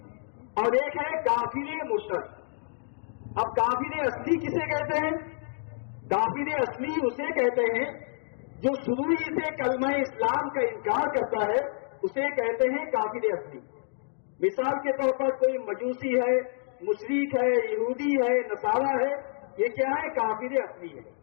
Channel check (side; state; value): right; silent; digital silence